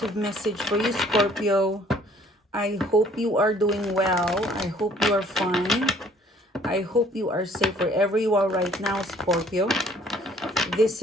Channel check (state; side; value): normal; both; correlation 0.58